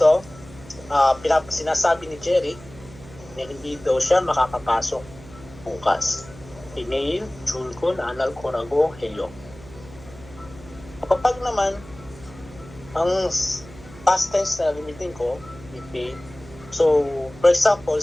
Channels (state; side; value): noise; right; hum, 19 dB below the sound